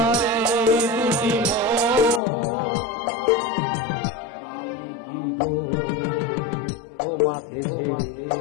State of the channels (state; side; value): drops out; right; at 2.2 s